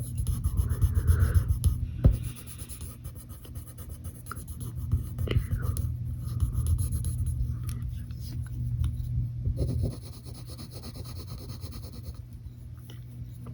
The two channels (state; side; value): identical; both; correlation 1.00